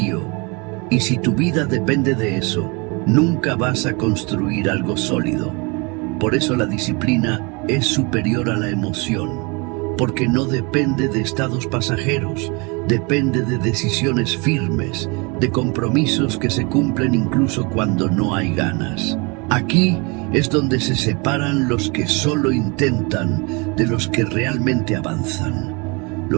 y si tu vida depende de eso, nunca vas a construir algo sólido. Por eso la disciplina es superior a la emoción. Porque no depende de estados pasajeros, depende de decisiones firmes, de compromisos que se cumplen incluso cuando no hay ganas. Aquí es donde se separan los que solo intentan de los que realmente avanzan.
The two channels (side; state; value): left; quieter; 29.6 dB